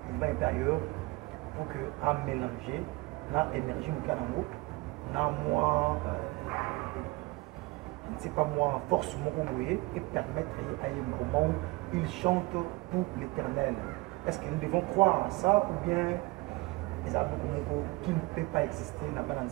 il va être ailleurs pour que à mélanger l'énergie du canamo, moi, je ne sais pas moi, force et permettre à un moment où il chante pour l'éternel. Est-ce que nous devons croire à ça ou bien les Abokomoko qui ne peut pas exister dans le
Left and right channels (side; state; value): left; quieter; 23.7 dB